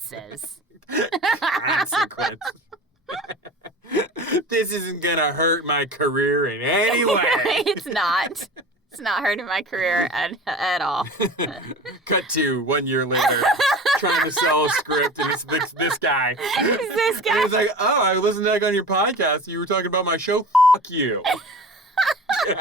Consequences. This isn't going to hurt my career in any way. It's not. It's not hurting my career at all. Cut to 1 year later, trying to sell a script, and it's this guy. It's this guy. And he's like, oh, I listened to that on your podcast. You were talking about my show. Fuck you. Get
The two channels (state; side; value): normal; both; correlation 0.36